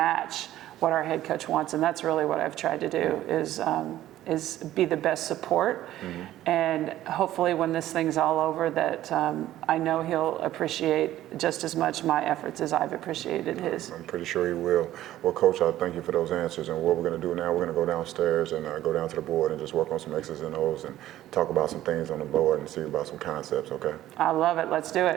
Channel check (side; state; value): left; quieter; 13.8 dB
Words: what our head coach wants. And that's really what I've tried to do, is be the best support. And hopefully when this thing's all over, that I know he'll appreciate just as much my efforts as I've appreciated his. I'm pretty sure he will. Well, Coach, I thank you for those answers. And what we're going to do now, we're going to go downstairs and go down to the board and just work on some X's and O's and talk about some things on the board and see about some concepts, okay? I love it. Let's do